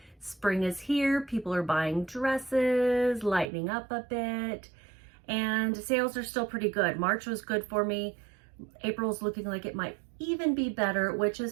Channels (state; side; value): drops out; left; at 3.5 s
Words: Spring is here. People are buying dresses, lightening up a bit, and sales are still pretty good. March was good for me. April's looking like it might even be better, which